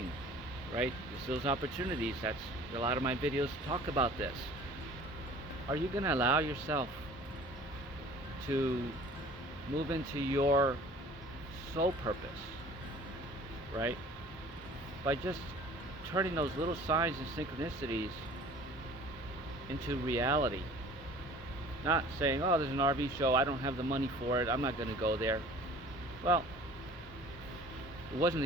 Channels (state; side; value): normal; both; correlation 0.47